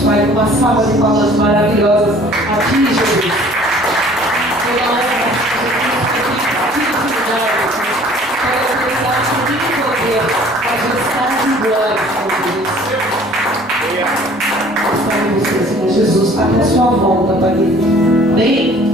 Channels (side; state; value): both; normal; correlation 0.52